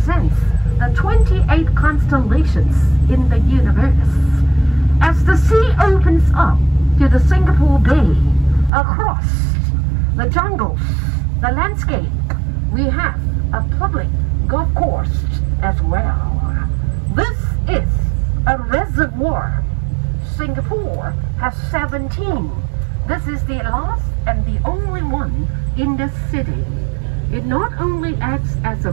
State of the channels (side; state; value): left; drops out; at 8.7 s